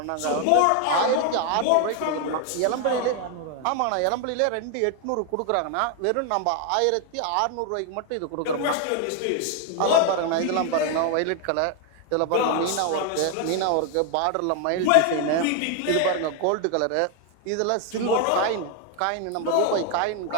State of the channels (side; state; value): both; different; correlation 0.01